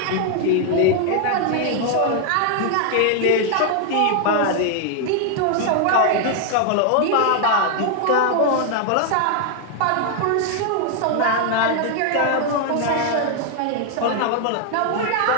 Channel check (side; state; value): both; different; correlation 0.00